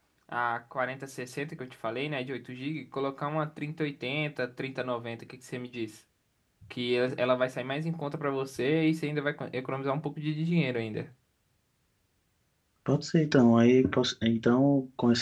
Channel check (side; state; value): both; identical; correlation 1.00